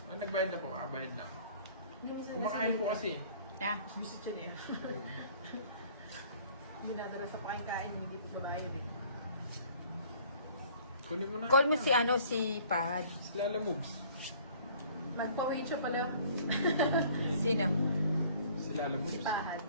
Nagbayad na po. Bayad lang. Kumakain po kasi. Na. Visit siya niya. Hindi natara sa pakikain, hindi ko babayad eh. Kunin mo na. Call mo si ano, si Pahad. Si Lala moves. Magpa-wait siya pala. Sino? Si Lala Si moves. Pahad.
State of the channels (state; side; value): inverted; both; correlation -0.54